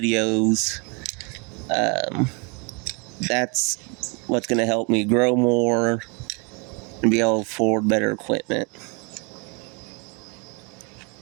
that's what's going to help me grow more and be able to afford better equipment.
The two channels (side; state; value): left; quieter; 32.1 dB